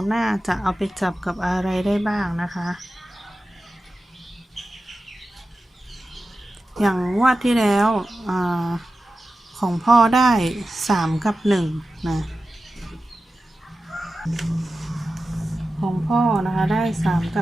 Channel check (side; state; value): both; normal; correlation 0.93